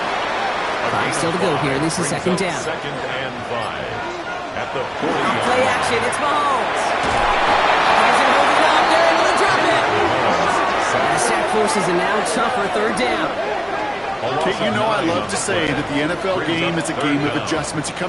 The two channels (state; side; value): identical; both; correlation 1.00